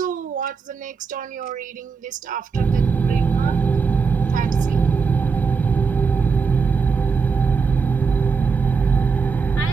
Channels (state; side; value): quieter; left; 5.2 dB